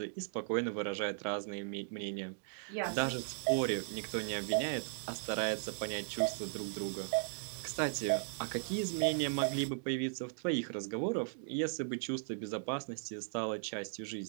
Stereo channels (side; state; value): left; silent; digital silence